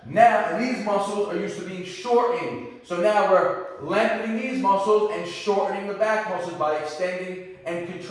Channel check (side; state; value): both; identical; correlation 1.00